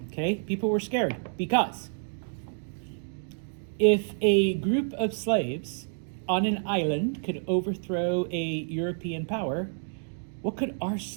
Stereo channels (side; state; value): left; silent; digital silence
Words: Okay, people were scared because if a group of slaves on an island could overthrow a European power, what could our